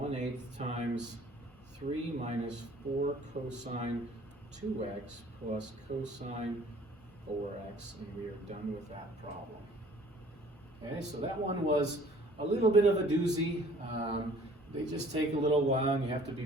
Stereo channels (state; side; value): normal; both; correlation 0.53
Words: times 3 minus 4 cosine 2x plus cosine 4x, and we are done with that problem. Okay, so that one was a little bit of a doozy. They just take a little while, and you have to